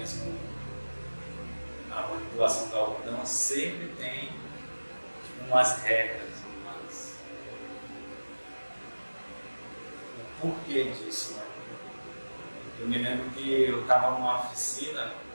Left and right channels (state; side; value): inverted; both; correlation -1.00